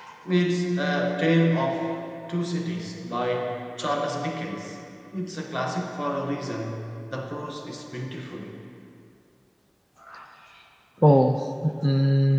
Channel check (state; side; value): identical; both; correlation 1.00